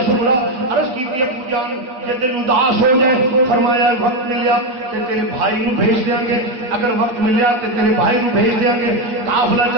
سغرا عرض کیتی ہے پوجان کہ دل اداس ہو جائے، فرمایا وقت ملیا تے تیرے بھائی نو بھیج دیاں گے، اگر وقت ملیا تے تیرے بھائی نو بھیج دیاں گے. قافلہ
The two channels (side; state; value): left; late; 8.1 ms